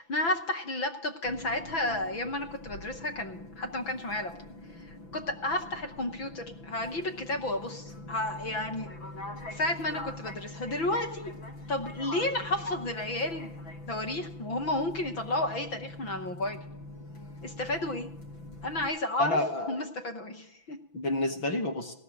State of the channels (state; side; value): late; right; 6.0 ms